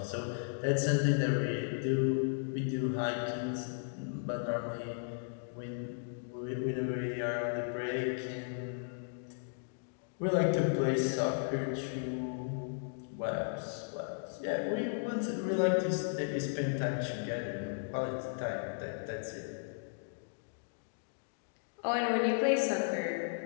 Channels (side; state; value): right; silent; digital silence